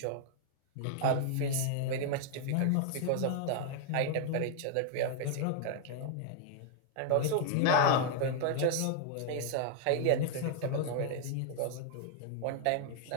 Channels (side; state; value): both; different; correlation 0.00